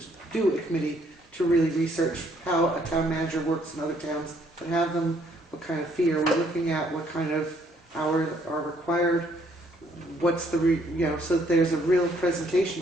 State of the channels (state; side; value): normal; both; correlation 0.67